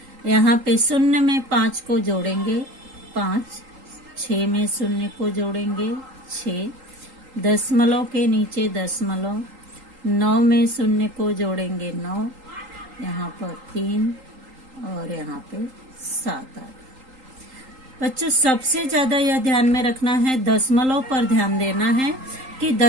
यहाँ पे 0 में 5 को जोड़ेंगे 5, 6 में शून्य को जोड़ेंगे 6, दशमलव के नीचे दशमलव, 9 में शून्य को जोड़ेंगे 9, यहाँ पर 3 और यहाँ पे 7 आ गया। बच्चों सबसे ज्यादा यह ध्यान में रखना है, दशमलव पर ध्यान देना है कि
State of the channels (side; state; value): left; late; 3.8 ms